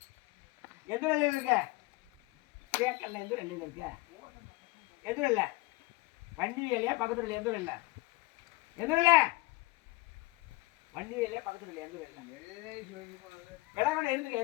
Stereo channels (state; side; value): quieter; right; 22.0 dB